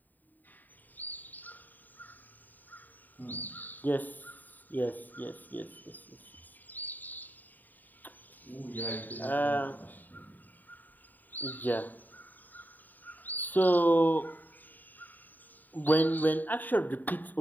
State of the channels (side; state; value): right; late; 0.087 ms